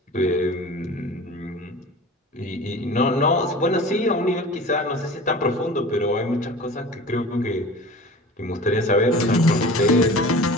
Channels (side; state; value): both; normal; correlation 0.38